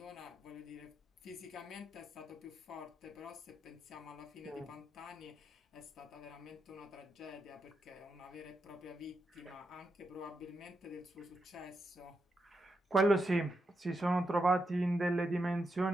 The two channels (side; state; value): both; normal; correlation 0.85